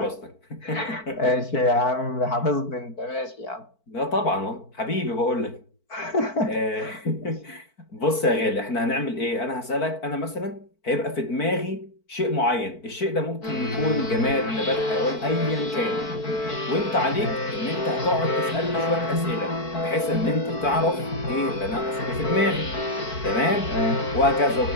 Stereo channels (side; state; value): right; late; 4.5 ms